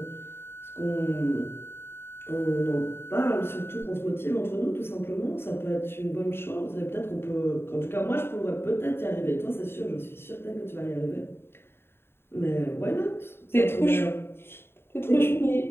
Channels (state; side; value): late; right; 0.11 ms